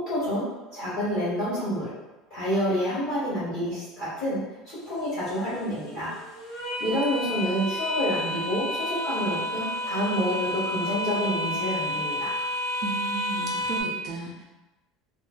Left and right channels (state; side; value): normal; both; correlation 0.32